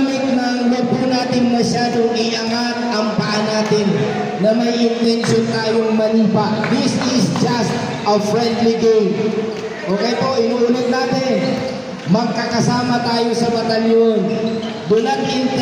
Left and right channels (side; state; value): both; identical; correlation 1.00